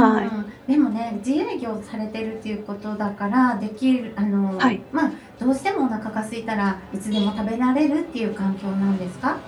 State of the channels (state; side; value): identical; both; correlation 1.00